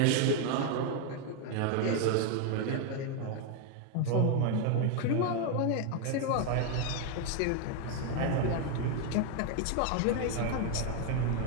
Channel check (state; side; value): different; both; correlation 0.01